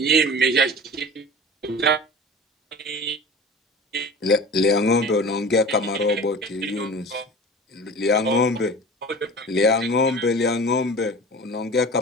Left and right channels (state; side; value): normal; both; correlation 0.37